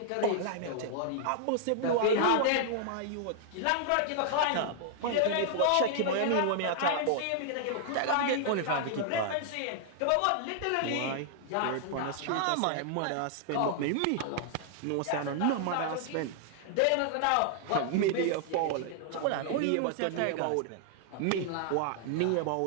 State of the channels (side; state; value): both; different; correlation -0.01